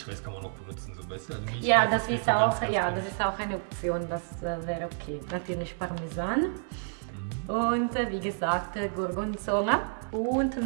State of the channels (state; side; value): silent; left; 58 dB below the other